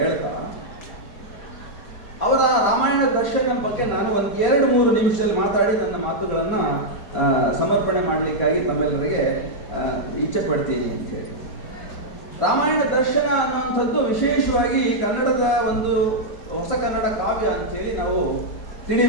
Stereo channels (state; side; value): late; right; 5.1 ms